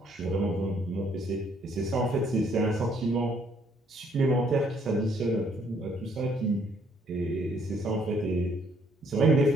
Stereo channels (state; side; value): normal; both; correlation 0.67